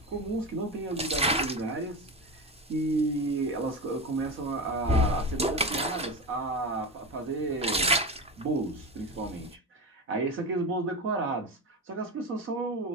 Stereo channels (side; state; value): both; normal; correlation 0.21